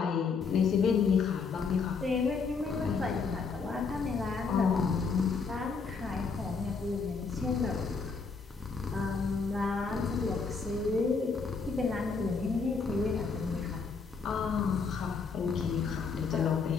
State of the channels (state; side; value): quieter; right; 5.0 dB